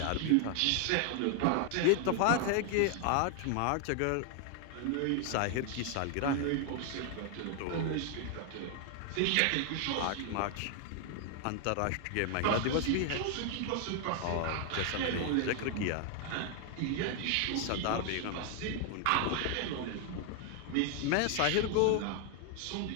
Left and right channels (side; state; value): both; different; correlation 0.00